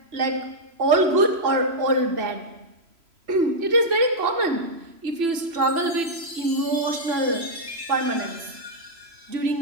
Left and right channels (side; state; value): left; late; 3.0 ms